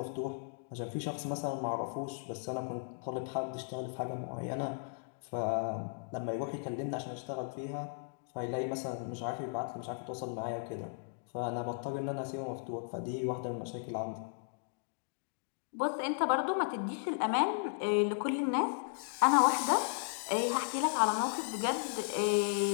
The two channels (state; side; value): silent; right; digital silence